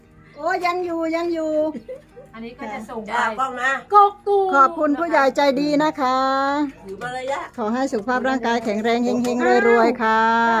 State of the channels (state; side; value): identical; both; correlation 1.00